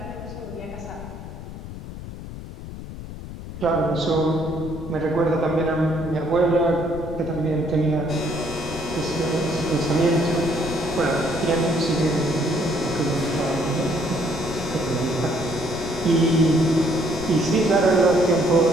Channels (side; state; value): left; noise; rumble, 11 dB below the sound